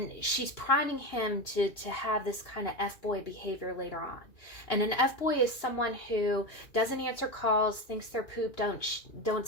she's priming him to have this kind of F-boy behavior later on. And an F-boy is someone who doesn't answer calls, thinks their poop don't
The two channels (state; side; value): late; right; 2.8 ms